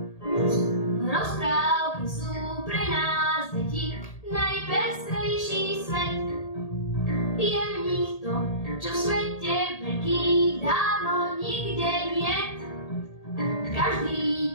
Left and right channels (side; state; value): right; late; 1.8 ms